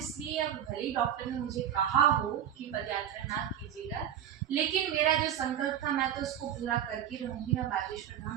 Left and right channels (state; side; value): quieter; left; 10.0 dB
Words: अब भले ही डॉक्टर ने मुझे कहा हो कि पद यात्रा ना कीजिएगा, लेकिन मेरा जो संकल्प था मैं तो उसको पूरा करके रहूंगी। मैं बागेश्वर धाम